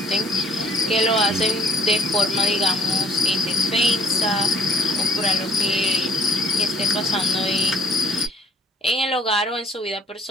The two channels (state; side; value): normal; both; correlation 0.55